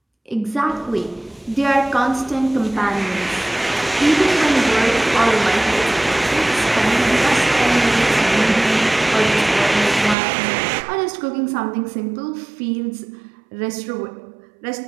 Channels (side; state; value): left; drops out; at 10.2 s